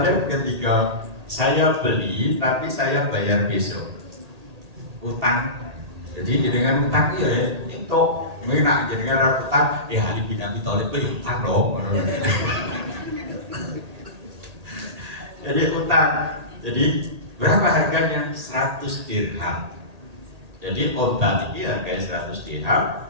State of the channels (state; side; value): late; left; 1.8 ms